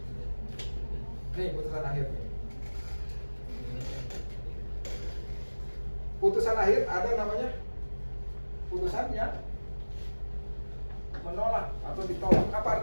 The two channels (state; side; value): inverted; both; correlation -1.00